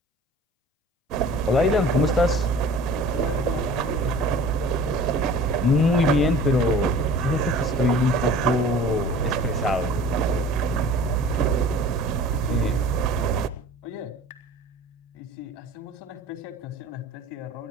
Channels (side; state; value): both; normal; correlation 0.44